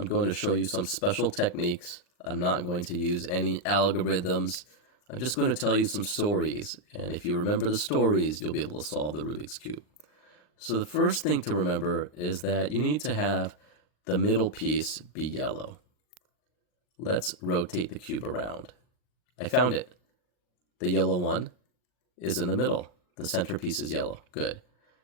going to show you some special techniques. I'm not going to use any algorithms. I'm just going to tell you some stories, and if you remember the stories, you'll be able to solve the Rubik's Cube. So the first thing to remember is that you need to have the middle piece be yellow. Let's rotate the cube around. I found it. The yellow one is in the middle. The centerpiece is yellow. Good.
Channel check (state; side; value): late; right; 39 ms